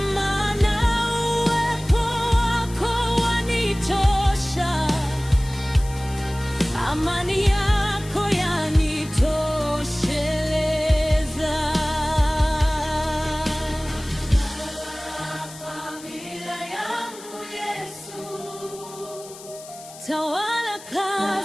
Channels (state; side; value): noise; left; hiss, 17 dB below the sound